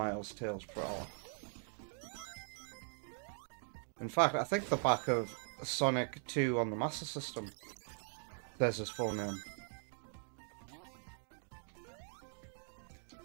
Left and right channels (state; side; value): silent; left; 50 dB below the other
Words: Tails Prower. In fact, I think the back of Sonic 2 on the Master System says his full name.